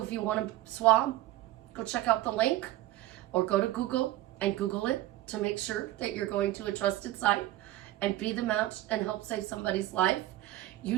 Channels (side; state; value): left; quieter; 15.6 dB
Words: if you want to swab, go check out the link or go to Google and Google it to make sure that you're going to a trusted site and be the match and help save somebody's life.